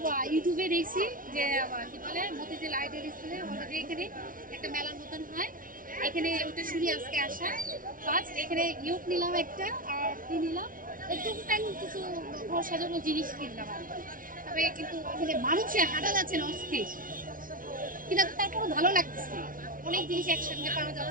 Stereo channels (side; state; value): left; late; 0.40 ms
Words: ইউটিউবে দেখছি যে কি বলে মতিঝিল লাইব্রেরি স্কুলে অলরেডি এখানে একটা মেলার মতন হয়, এখানে ওটা শুনি আজকে আসা ফার্স্ট। এখানে ইয়োগ নিলাম একটা, আর কি নিলাম একদম কিছু ঘর সাজানো জিনিস কিনলাম আর কি। তবে কিন্তু এখানে মানুষে হাঁটা যাচ্ছে না অস্থির, কিন্তু তারপরে ভালো লাগতেছে, অনেক জিনিস একসঙ্গে পাওয়া